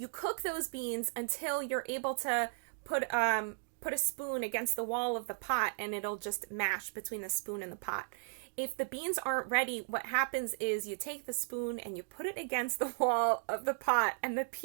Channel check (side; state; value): left; silent; digital silence